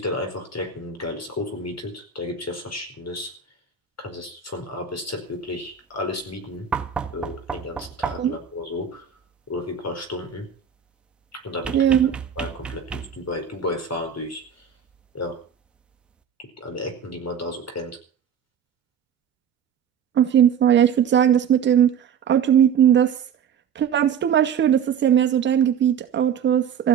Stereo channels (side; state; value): left; quieter; 7.7 dB